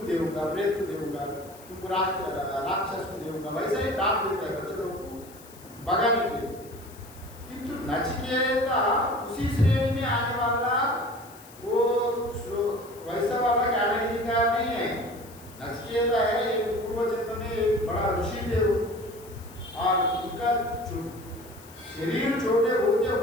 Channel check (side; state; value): left; noise; hiss, 22 dB below the sound